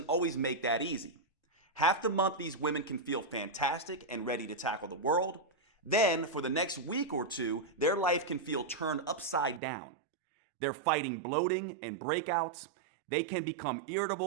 always make that easy. Half the month these women can feel fantastic and ready to tackle the world. Then, for the next week or two, their life can feel turned upside down. They're fighting bloating and breakouts. They can become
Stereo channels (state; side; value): drops out; left; at 9.6 s